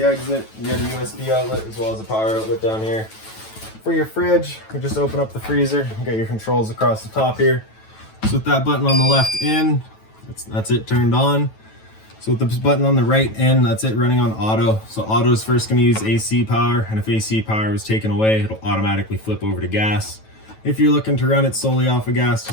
exit. You got a USB outlet as well as a power outlet down here. For your fridge, we just open up the freezer. You got your controls across the top here. So with that button on the left in, that's it turned on. So with this button on the right in, that's it running on auto. So auto is first going to use AC power, and if AC power was taken away, it'll automatically flip over to gas. If you're looking to run it solely off of gas,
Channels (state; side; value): late; right; 9.2 ms